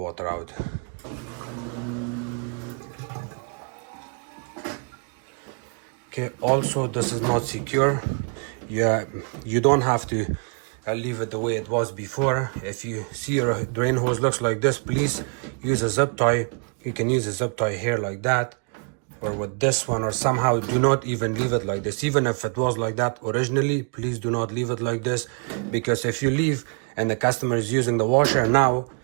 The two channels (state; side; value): quieter; left; 39.8 dB